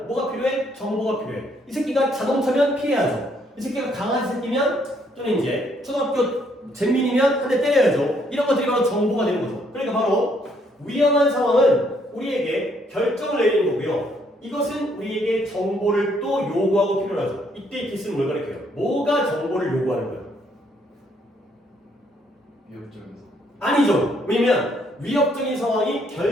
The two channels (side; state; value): both; normal; correlation 0.69